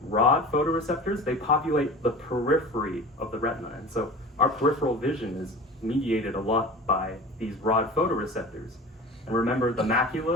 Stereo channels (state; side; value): normal; both; correlation 0.36